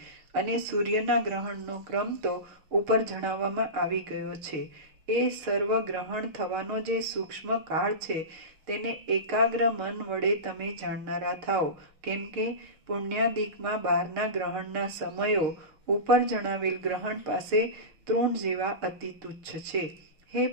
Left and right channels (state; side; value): late; left; 6.5 ms